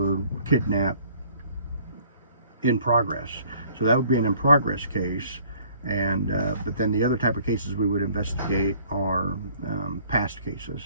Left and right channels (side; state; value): both; inverted; correlation -0.57